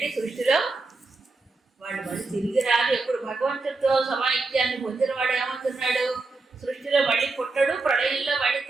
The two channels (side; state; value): left; quieter; 3.6 dB